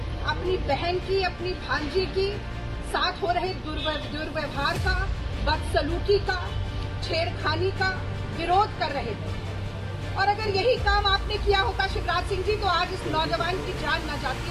अपनी बहन की, अपनी भांजी की साथ हो रहे दुर्व्यवहार का, बदसलूकी का, छेड़खानी का विरोध कर रहे थे। और अगर यही काम आपने किया होता शिवराज सिंह जी, तो आज इस नौजवान की जान न जाती।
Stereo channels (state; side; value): identical; both; correlation 1.00